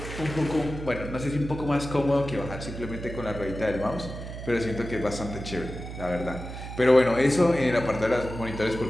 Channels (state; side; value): noise; right; hum, 9 dB below the sound